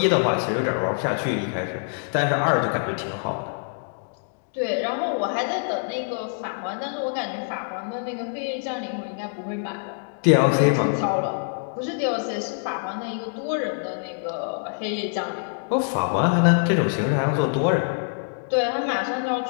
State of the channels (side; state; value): right; silent; digital silence